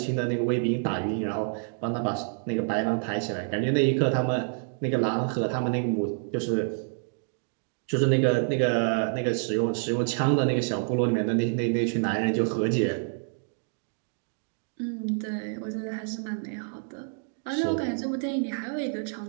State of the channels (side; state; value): left; silent; digital silence